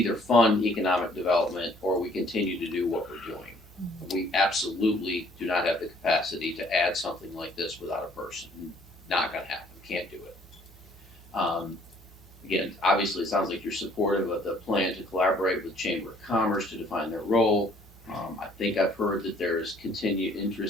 fund economic development or we continue to do what we're doing. We absolutely do not have the capacity to add something like this without a person. Not gonna happen, can't do it. Again, obviously, it sounds like you're supportive of the plan to collaborate with Chamber of Commerce to define their role. I think I've heard that there is continued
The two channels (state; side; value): normal; both; correlation 0.59